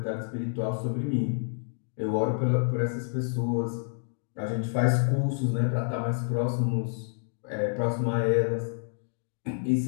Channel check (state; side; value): silent; right; digital silence